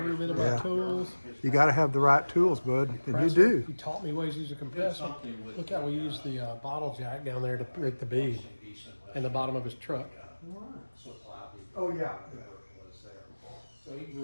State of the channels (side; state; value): both; inverted; correlation -1.00